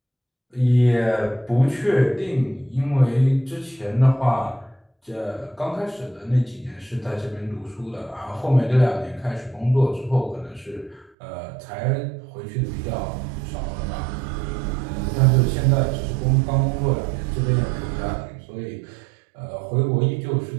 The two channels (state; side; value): drops out; left; at 11.1 s